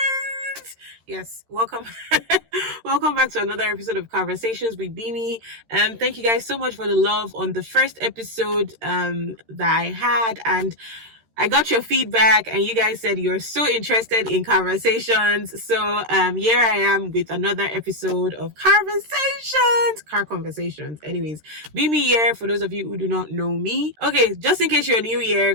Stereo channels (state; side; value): late; left; 13 ms